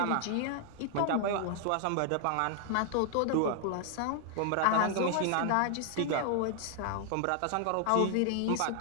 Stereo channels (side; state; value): both; different; correlation 0.00